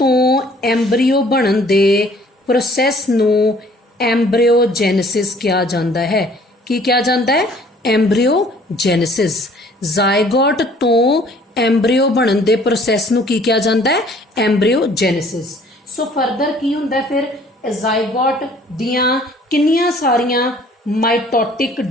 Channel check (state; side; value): normal; both; correlation 0.56